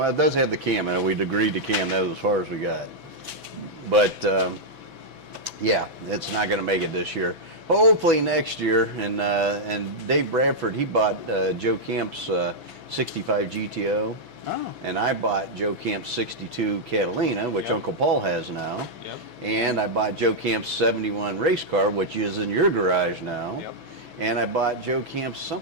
it does have the cam, and we'd agreed to cam. That was as far as we got. But yeah, it's not going to make it this year. Hopefully next year. And Dave Bradford, he bought Joe Camp's 65 GTO, and I bought Joe Camp's 62 Catalina, which Uncle Paul has now. Yep. And I bought Joe Camp's 71 race car, which is in your garage now. Yep. And I bought Joe Camp's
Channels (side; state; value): left; late; 6.1 ms